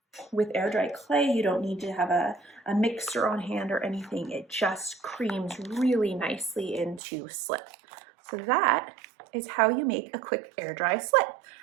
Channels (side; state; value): left; drops out; at 7.0 s